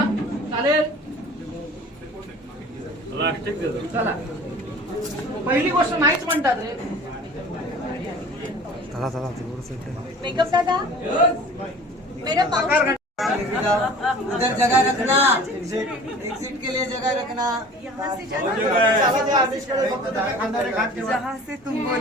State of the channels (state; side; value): normal; both; correlation 0.44